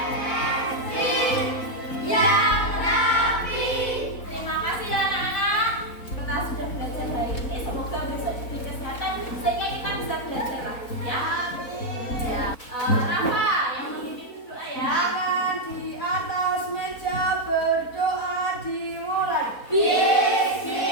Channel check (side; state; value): right; late; 4.1 ms